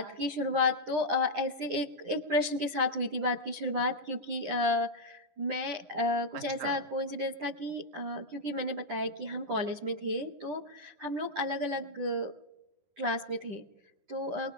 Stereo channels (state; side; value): late; left; 10 ms